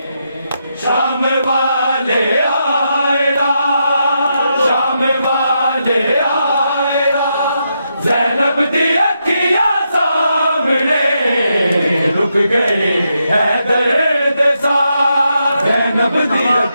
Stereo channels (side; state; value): both; inverted; correlation -0.82